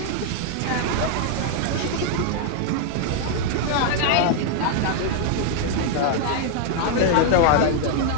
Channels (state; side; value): different; both; correlation 0.00